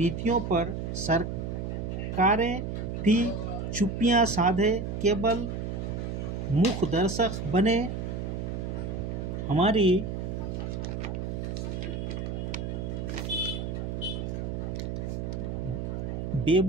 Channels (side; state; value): right; noise; hum, 4 dB below the sound